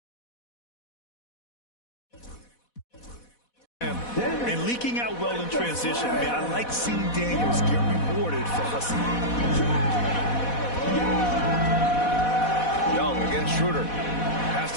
And leaking out well in transition. Man, I like seeing Daniels get rewarded for hustling. Young against Schroeder. Pass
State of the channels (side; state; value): right; late; 4.1 ms